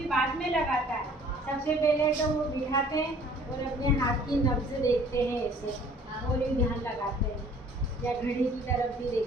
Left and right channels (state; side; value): normal; both; correlation 0.54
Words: बाद में लगाता है। सबसे पहले तो वो बिठाते हैं और अपने हाथ की नब्ज देखते हैं ऐसे, और भी ध्यान लगाते हैं, या घड़ी की तरफ भी